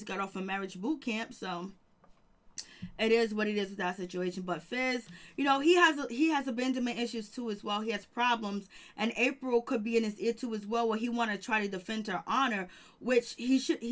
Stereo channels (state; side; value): identical; both; correlation 1.00